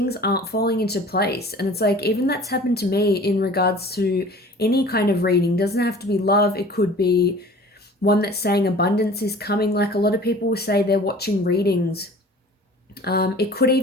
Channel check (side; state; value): both; normal; correlation 0.45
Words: aren't falling into place. And it's like, even that's happened to me in regards to any kind of reading. It doesn't have to be love, it could be one that's saying abundance is coming. Like a lot of people will say they're watching readings. It could